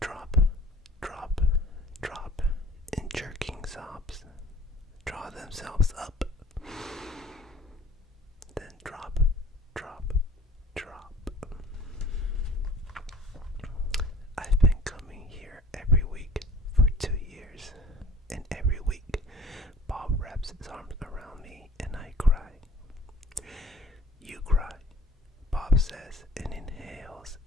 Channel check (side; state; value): both; normal; correlation 0.50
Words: drop, drop, drop in jerking sobs. Draw themselves up. Then drop, drop, drop. I've been coming here every week for 2 years, and every week Bob wraps his arms around me and I cry. You cry, Bob says, and inhales